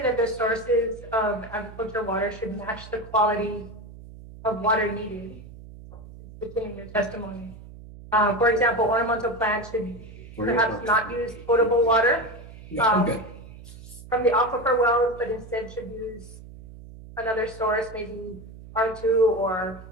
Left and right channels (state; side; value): noise; right; hum, 17 dB below the sound